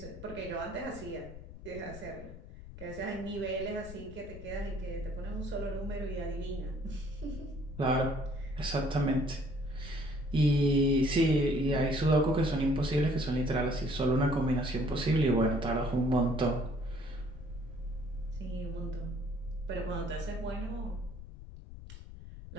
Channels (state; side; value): noise; left; rumble, 14 dB below the sound